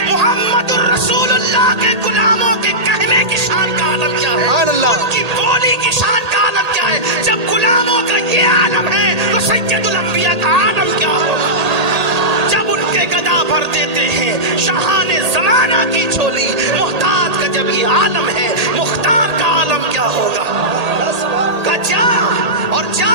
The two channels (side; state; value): left; late; 1.8 ms